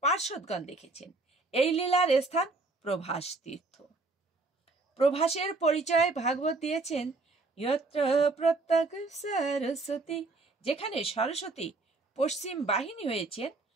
পার্শ্বদগণ দেখেছেন। এই লীলার স্থান প্রভাস তীর্থ। প্রভাসের পরিচয় ভাগবত দিয়েছেন যত্র প্রত্যক সরস্বতী, যেখানে সরস্বতী পশ্চিম বাহিনী হয়েছেন।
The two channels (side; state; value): left; quieter; 3.4 dB